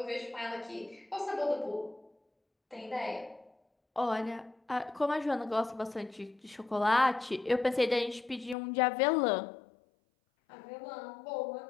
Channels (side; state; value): right; drops out; at 8.6 s